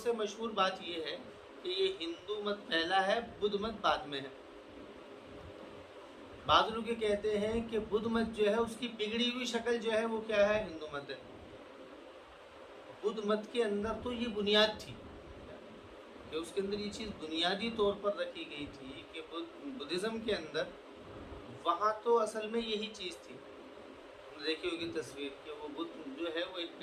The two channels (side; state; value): both; identical; correlation 1.00